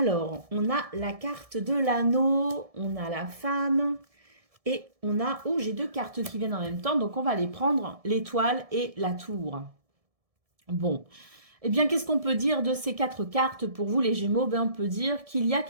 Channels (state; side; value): late; left; 1.7 ms